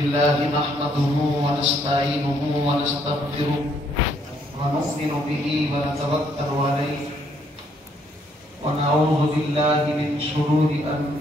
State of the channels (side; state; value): both; normal; correlation 0.69